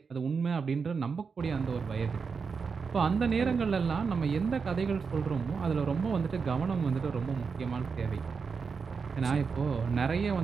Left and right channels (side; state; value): left; quieter; 5.4 dB